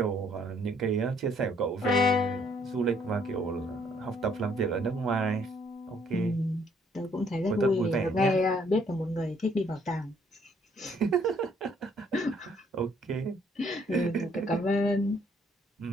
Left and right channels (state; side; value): normal; both; correlation 0.66